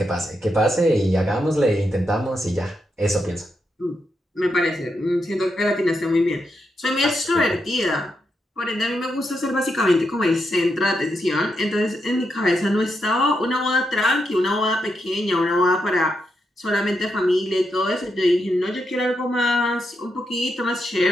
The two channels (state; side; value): normal; both; correlation 0.83